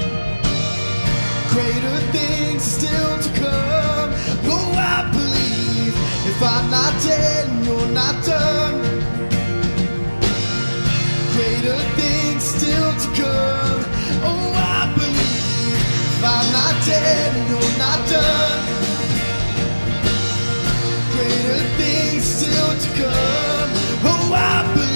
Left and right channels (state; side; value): inverted; both; correlation -1.00